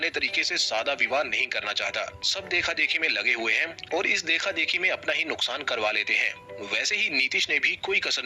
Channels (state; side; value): identical; both; correlation 1.00